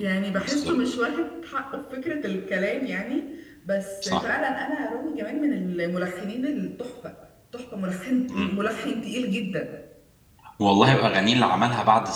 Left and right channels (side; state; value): both; identical; correlation 1.00